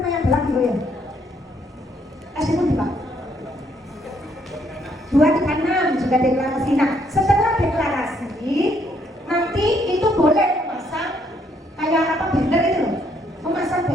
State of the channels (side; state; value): both; normal; correlation 0.70